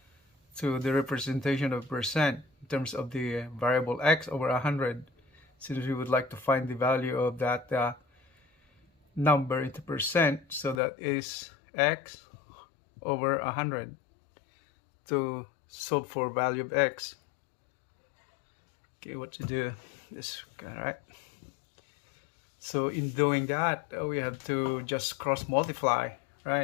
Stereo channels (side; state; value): right; drops out; at 10.8 s